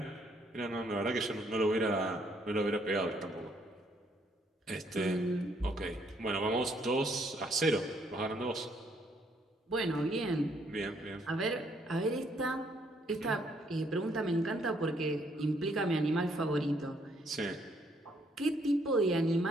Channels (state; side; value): normal; both; correlation 0.69